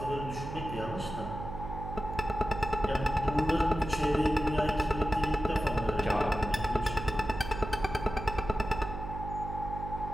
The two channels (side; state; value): right; noise; hum, 8 dB below the sound